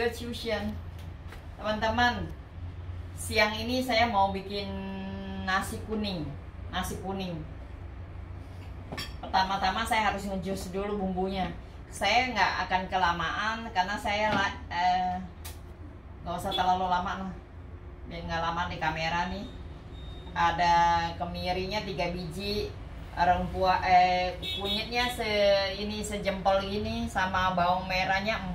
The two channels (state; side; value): identical; both; correlation 1.00